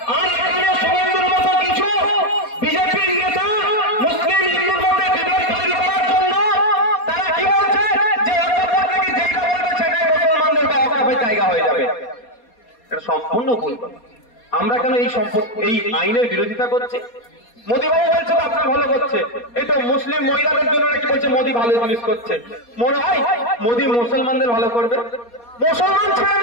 আর এখানে শুভেন্দুর মতো কিছু বিজেপির নেতা মুসলিম হিন্দুর মধ্যে বিভেদ তৈরি করার জন্য তারা কি বলছে যে যেটা বলবে সেটাই মুসলমানদের বা ওয়াকাফের জায়গা হয়ে যাবে। এটা সম্পূর্ণ ভুল কথা। আমরা কেন এই আইনের বিরোধিতা করছি? মোদীবাবু বলছে তো আপনার ভালো করছে, এই তো মুসলিম মহিলাদের জন্য নাকি বলছে মোদী ভালো জিনিস করছে। মনে হয় মোদী মুসলমানদের ভালো করবে? মুসলমান ছেড়ে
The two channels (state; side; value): late; right; 4.2 ms